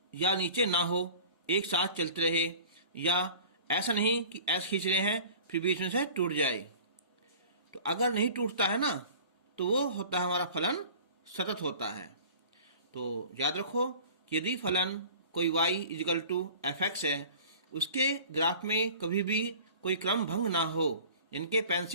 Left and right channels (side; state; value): both; inverted; correlation -0.43